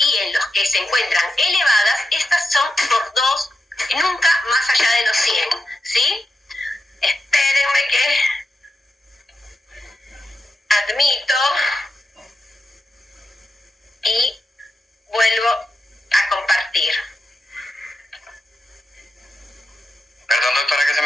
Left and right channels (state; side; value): normal; both; correlation 0.88